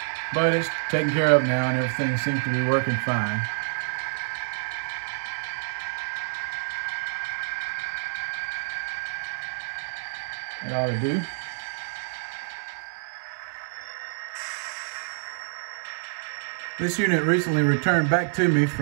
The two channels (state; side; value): silent; left; 60 dB below the other